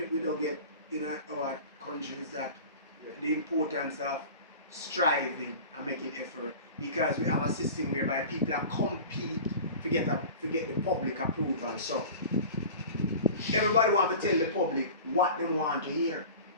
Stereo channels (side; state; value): both; inverted; correlation -0.37